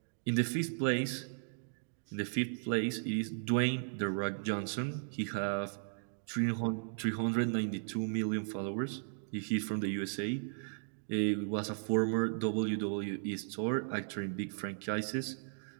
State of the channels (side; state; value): left; silent; digital silence